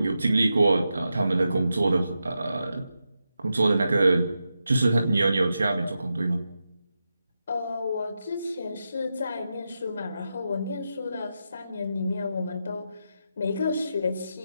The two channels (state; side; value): inverted; both; correlation -0.88